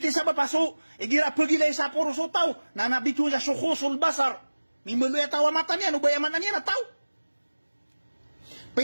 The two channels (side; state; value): both; inverted; correlation -1.00